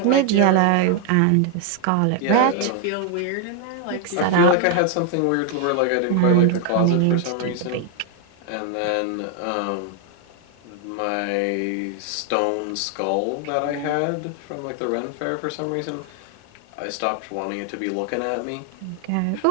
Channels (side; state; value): both; different; correlation 0.00